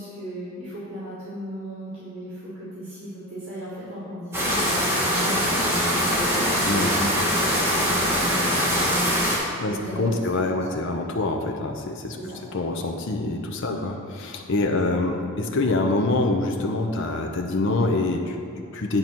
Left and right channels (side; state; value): both; normal; correlation 0.25